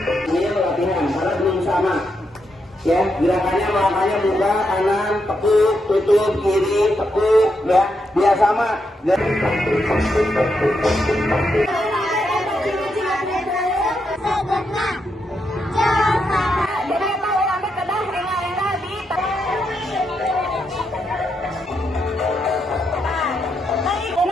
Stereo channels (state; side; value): normal; both; correlation 0.82